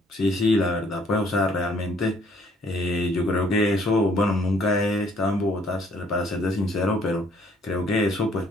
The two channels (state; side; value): normal; both; correlation 0.63